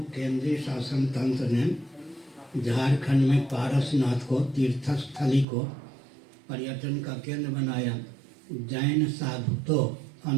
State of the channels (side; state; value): left; drops out; at 5.5 s